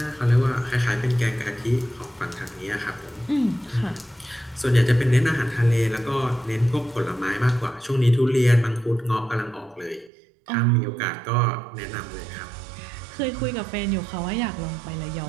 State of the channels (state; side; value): drops out; left; at 10.1 s